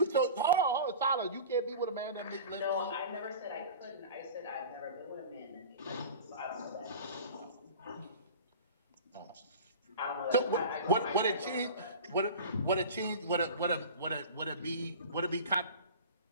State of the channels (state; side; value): inverted; both; correlation -0.36